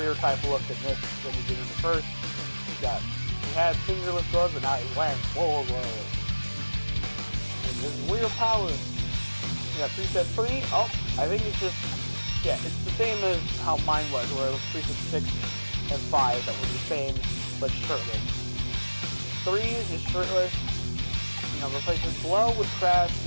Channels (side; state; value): both; inverted; correlation -1.00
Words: type look in this when he did in the first. He had fingerless gloves, but now he's wearing full gloves. And this is weird power. We got preset 3. Oh, I think it's just, yeah, it's the same as how mine was, where it was preset 6 and 5 that were the same, but shirtless. 3 is just shirtless. You know, replaces Blow with Crash,